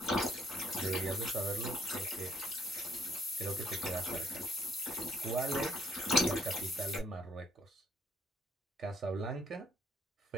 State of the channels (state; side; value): normal; both; correlation 0.66